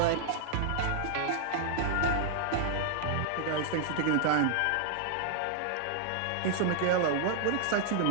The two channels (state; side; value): different; both; correlation -0.01